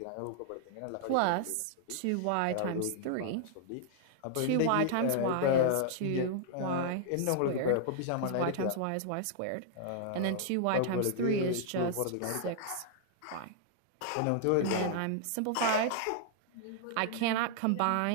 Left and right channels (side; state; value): both; different; correlation -0.01